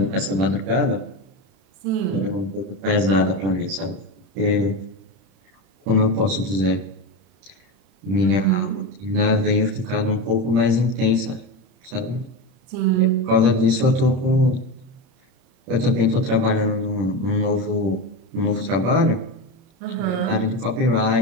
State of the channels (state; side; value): late; left; 31 ms